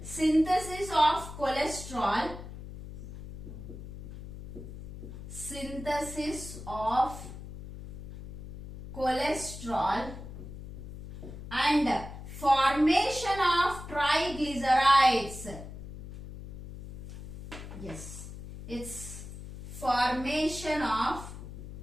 synthesis of cholesterol, and formation of triglycerides. Yes, it's formation of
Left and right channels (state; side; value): noise; left; hum, 11 dB below the sound